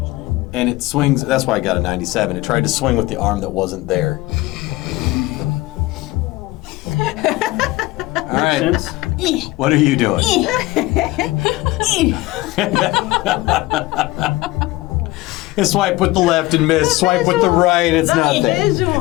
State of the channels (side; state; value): right; quieter; 19.3 dB